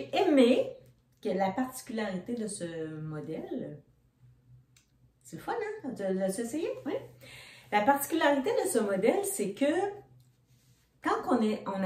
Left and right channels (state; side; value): identical; both; correlation 1.00